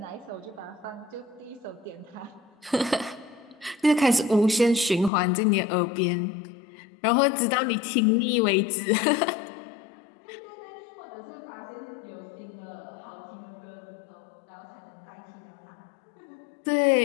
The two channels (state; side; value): drops out; right; at 5.1 s